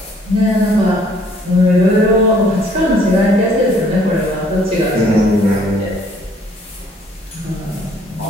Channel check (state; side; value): normal; both; correlation 0.61